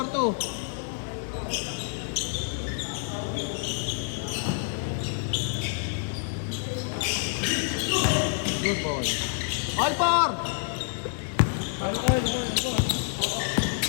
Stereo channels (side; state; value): right; silent; 60 dB below the other